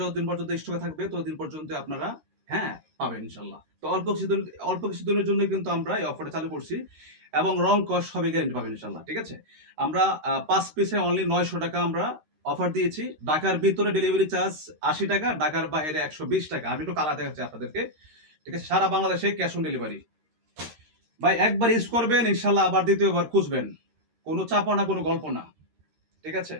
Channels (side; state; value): left; late; 13 ms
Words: যতদিন পর্যন্ত স্টকে থাকবে ততদিন পর্যন্ত আপনারা হ্যাঁ, পাবেন ইনশাআল্লাহ। তো অল্প কিছুদিনের জন্য কিন্তু আমরা এই অফারটা চালু করছি এবং রং কস সবই গ্যারান্টি পাবেন ইনশাআল্লাহ। ঠিক আছে? আমরা ৫ পিসে অনলি ৳৯০০ আমরা অফার দিয়েছি। ঢাকার ভিতরে ডেলিভারি চার্জ ৳৮০, ঢাকার বাইরে ৳১২০। আমি একটু কালার দেখাচ্ছি আপনাদেরকে। ঠিক আছে? সারা বাংলাদেশে ক্যাশ অন ডেলিভারি। ভাই একবার ইউজ করবেন ইনশাআল্লাহ আবার দ্বিতীয়বার খুঁজবেন। কোনো চাপা না, কোনো গল্প না। ঠিক আছে?